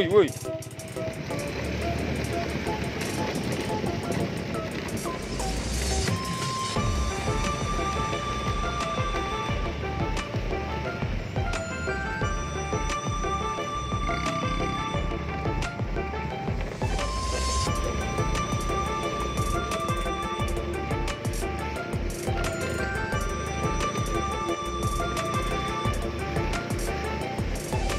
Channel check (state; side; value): identical; both; correlation 1.00